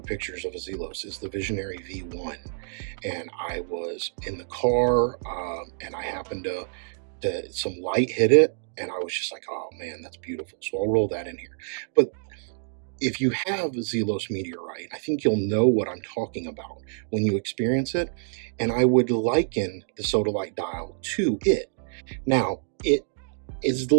pictures of a Zelos is the Visionary V1. And I was in the car, and I happened to some light hit it, and I was just like, oh man, that's beautiful. So I'll roll that in here. But if you have Zelos meteorite, I think you'll know what I'm talking about when you experience it. And I would liken the Sodalite Dial to it. Now, it is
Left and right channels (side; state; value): left; silent; digital silence